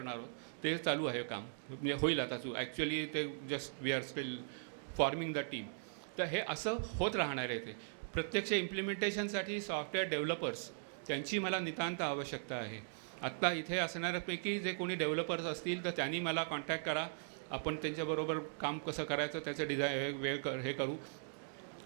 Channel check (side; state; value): left; silent; digital silence